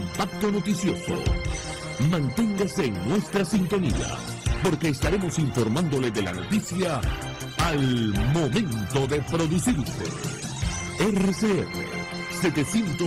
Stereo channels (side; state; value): both; identical; correlation 1.00